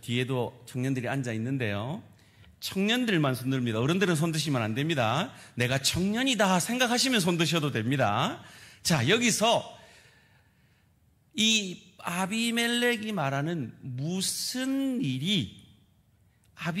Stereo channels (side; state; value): both; identical; correlation 1.00